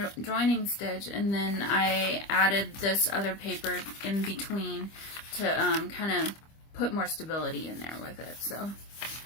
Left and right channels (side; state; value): right; late; 25 ms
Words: joining stitch, and then I added this other paper in between to kind of put more stability in there with it. So